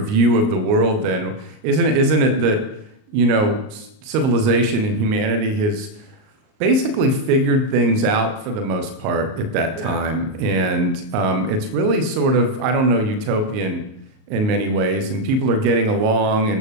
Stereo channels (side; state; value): left; late; 38 ms